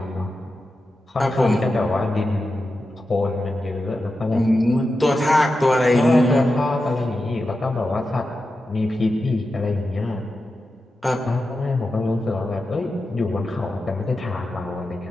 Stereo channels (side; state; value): both; normal; correlation 0.90